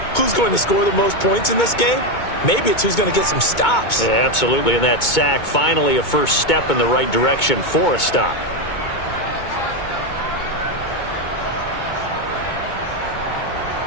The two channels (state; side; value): late; right; 2.2 ms